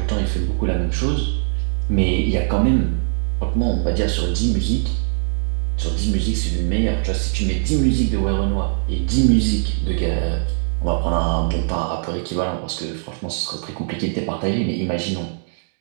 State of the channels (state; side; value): silent; left; 65 dB below the other